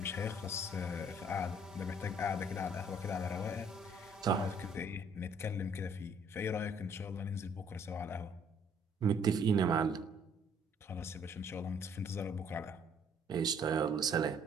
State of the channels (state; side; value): normal; both; correlation 0.62